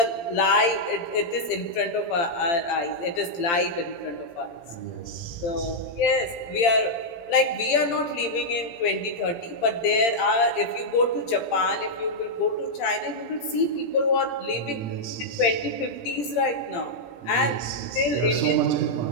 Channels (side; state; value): right; late; 17 ms